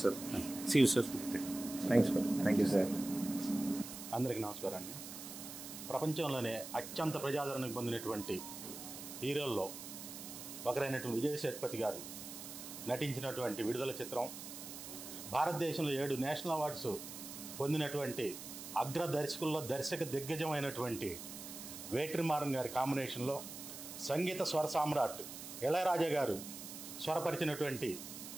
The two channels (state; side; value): noise; right; hiss, 10 dB below the sound